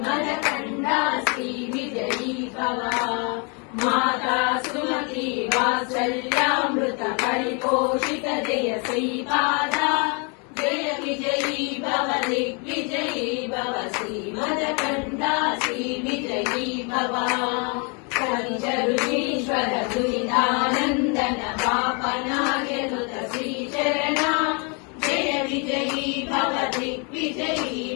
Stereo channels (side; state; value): right; quieter; 34.7 dB